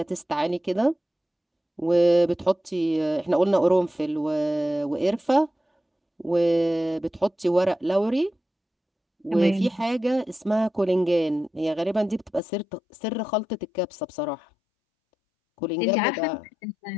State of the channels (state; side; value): drops out; right; at 12.4 s